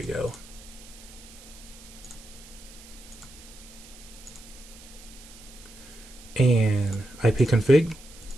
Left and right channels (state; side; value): noise; right; hiss, 19 dB below the sound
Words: go. And IP config.